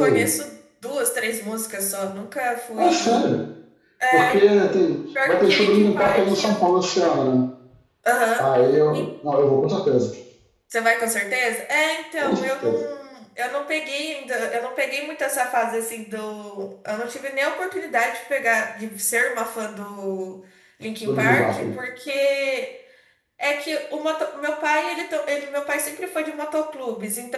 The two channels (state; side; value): identical; both; correlation 1.00